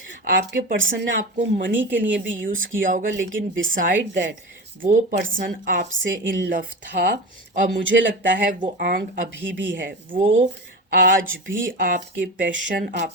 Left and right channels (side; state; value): both; normal; correlation 0.26